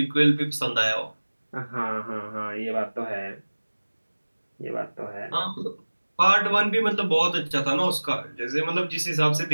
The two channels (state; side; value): inverted; both; correlation -1.00